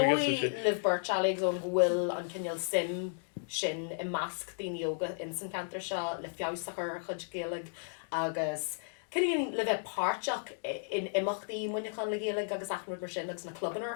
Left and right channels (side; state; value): right; silent; digital silence